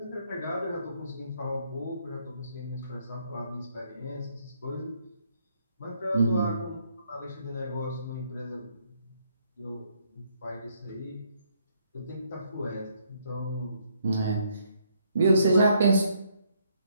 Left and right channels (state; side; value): inverted; both; correlation -0.70